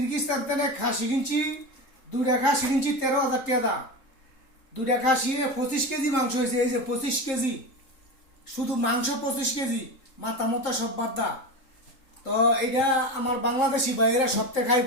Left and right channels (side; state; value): right; late; 3.8 ms